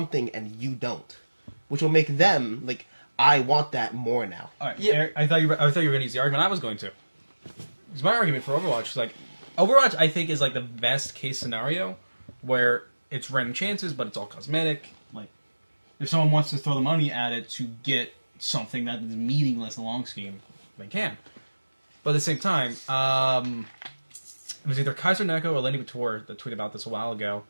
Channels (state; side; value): inverted; both; correlation -1.00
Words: and you don't. Which will make them, like, I want that more now. All right. Yeah. Eric, I thought you were going to use the argument I was going to. Because my argument for Overwatch is like, Overwatch I think is like the best case scenario where it's random chances, but it's all cosmetic. Like, if someone wants to throw the money at it to get something that is meaningless in the long scheme, they can. But at the same time, it was either Kaiser Neko or Lenny Bator that tweeted about this a while ago.